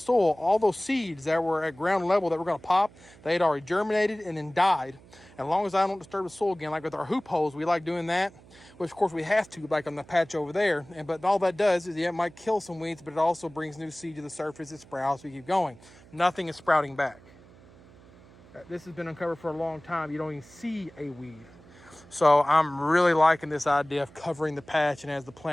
all those seeds that were at ground level that were gonna pop, they had already germinated and then died. And as long as I don't disturb the soil again, like with our hoop holes, we like doing that, which of course we have to, like on the patch over there. But all that does is, yeah, it might kill some weeds, but it also brings new seed to the surface, it sprouts, we keep going. Nothing is sprouting back. This has been uncovered for a long time. You don't even see a weed. So I'm really liking this idea of covering the patch, and as the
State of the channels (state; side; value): noise; right; hum, 24 dB below the sound